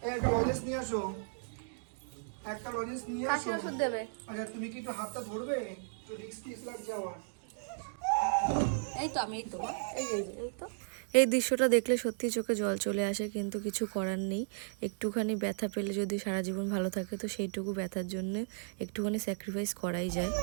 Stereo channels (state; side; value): silent; left; digital silence